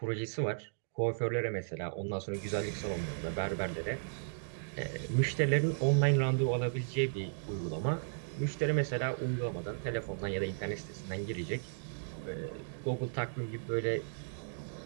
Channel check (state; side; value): silent; left; digital silence